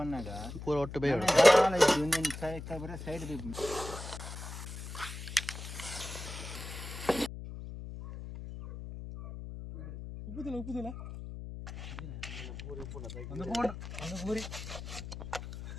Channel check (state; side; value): noise; left; hum, 9 dB below the sound